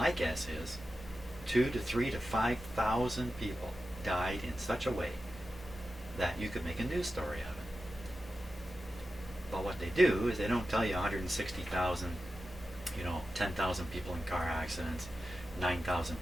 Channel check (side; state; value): both; normal; correlation 0.92